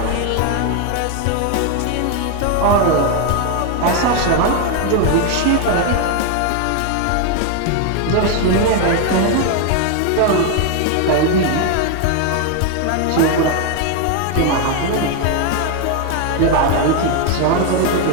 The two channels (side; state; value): both; different; correlation 0.01